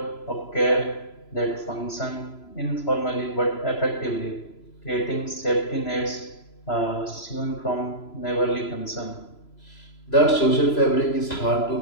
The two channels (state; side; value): late; right; 3.0 ms